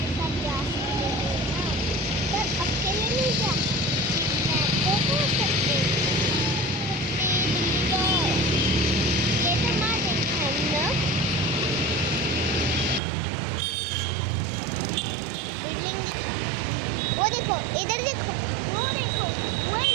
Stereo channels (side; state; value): left; drops out; at 13.0 s